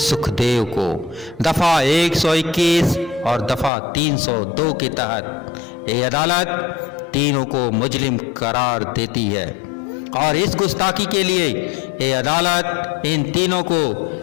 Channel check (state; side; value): drops out; right; at 3.7 s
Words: को दफा 121 और दफा 302 के तहत ये अदालत तीनों को मुजरिम करार देती है और इस गुस्ताखी के लिए ये अदालत इन तीनों को